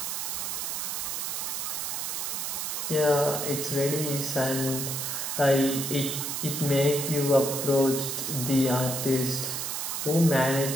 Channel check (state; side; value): noise; right; hiss, 2 dB below the sound